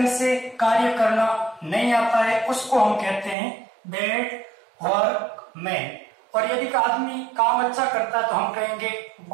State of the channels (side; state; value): left; drops out; at 3.4 s